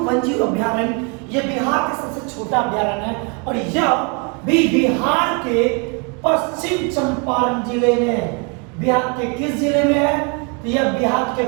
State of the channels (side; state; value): left; quieter; 34.2 dB